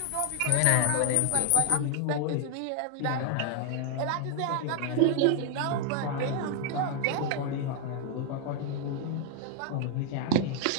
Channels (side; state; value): both; different; correlation 0.00